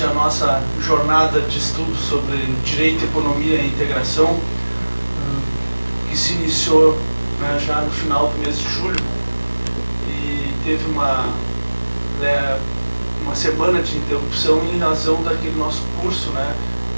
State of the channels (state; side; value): inverted; both; correlation -1.00